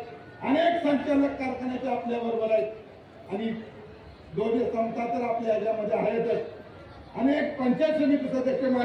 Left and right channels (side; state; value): both; identical; correlation 1.00